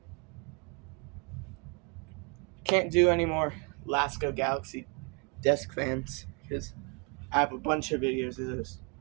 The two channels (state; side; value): quieter; left; 32.9 dB